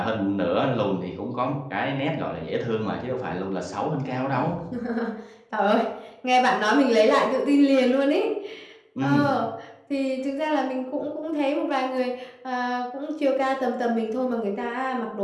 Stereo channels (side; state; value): both; identical; correlation 1.00